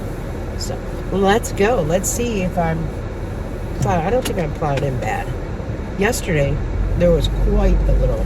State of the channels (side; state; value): both; identical; correlation 1.00